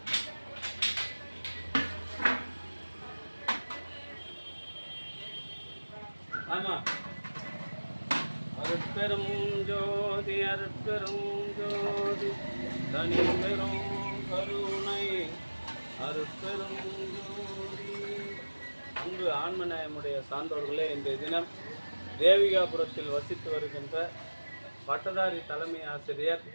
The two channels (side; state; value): both; inverted; correlation -1.00